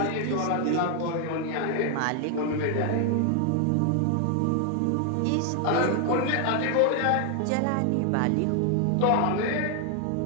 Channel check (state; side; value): different; both; correlation 0.00